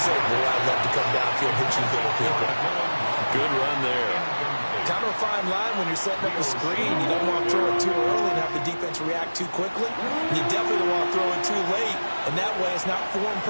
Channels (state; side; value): inverted; both; correlation -1.00